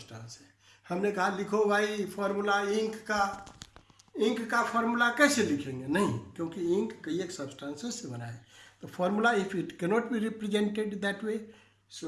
है। हमने कहा लिखो भाई फॉर्मूला इंक का फॉर्मूला कैसे लिखेंगे? नहीं, क्योंकि इंक कई एक सब्सटेंसेस से बना है। तो formula if it cannot be represented that way,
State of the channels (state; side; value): identical; both; correlation 1.00